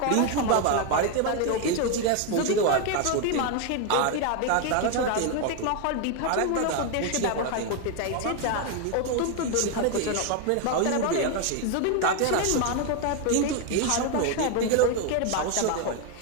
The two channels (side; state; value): both; different; correlation 0.01